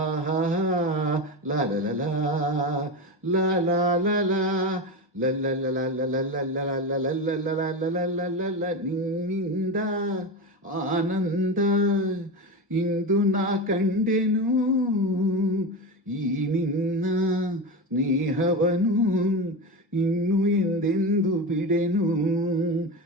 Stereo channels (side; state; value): both; normal; correlation 0.21